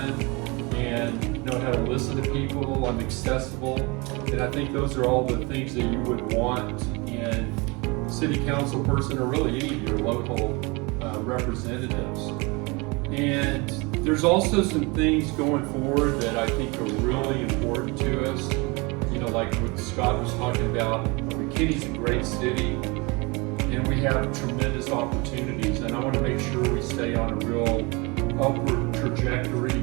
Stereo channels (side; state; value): left; quieter; 27.3 dB